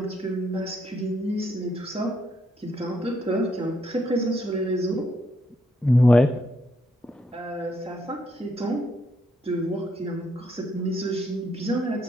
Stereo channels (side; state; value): both; normal; correlation 0.76